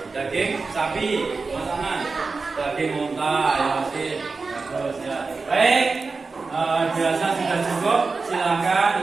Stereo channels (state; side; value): quieter; left; 4.2 dB